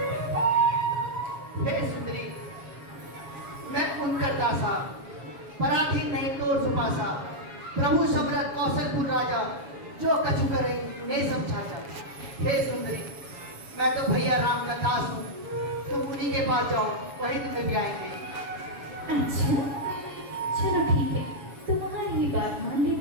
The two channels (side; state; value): left; late; 7.2 ms